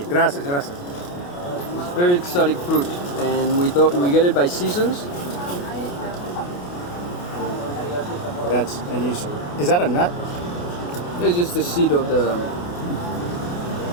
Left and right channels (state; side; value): late; right; 28 ms